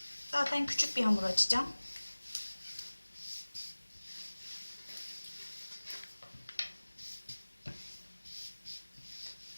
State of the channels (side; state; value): both; inverted; correlation -1.00